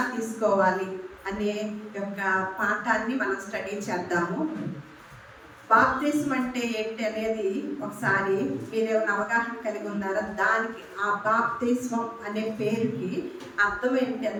తీసుకోవాలి అనే యొక్క పాఠాన్ని మనం స్టడీ చేద్దాము. బాప్తిస్మం అంటే ఏంటి అనేది ఒకసారి మీరేమైనా అవగాహన కలిగి ఉన్నారా? దానికి ఆ బాప్తిస్మం అనే పేరుకి అర్థం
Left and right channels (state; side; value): identical; both; correlation 1.00